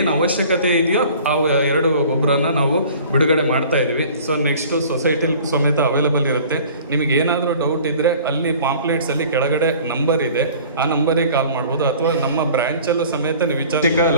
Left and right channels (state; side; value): inverted; both; correlation -0.47